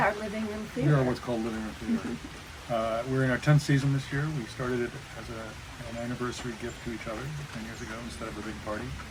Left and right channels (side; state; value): both; identical; correlation 1.00